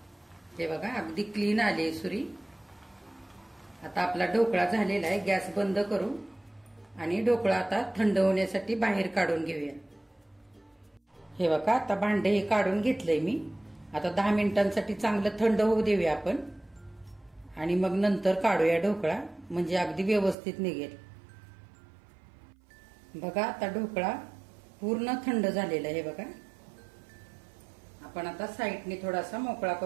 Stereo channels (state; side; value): drops out; left; at 20.4 s